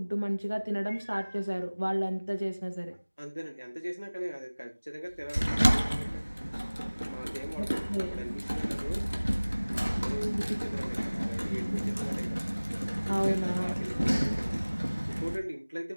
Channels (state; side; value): inverted; both; correlation -1.00